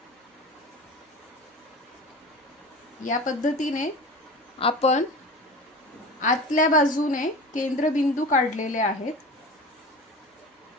या पद्धतीने आपण आतल्या बाजूने केंद्रबिंदू काढलेले आहेत।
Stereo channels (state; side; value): normal; both; correlation 0.34